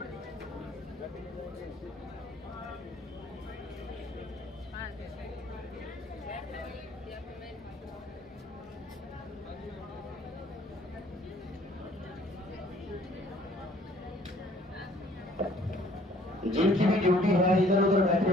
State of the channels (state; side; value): normal; both; correlation 0.57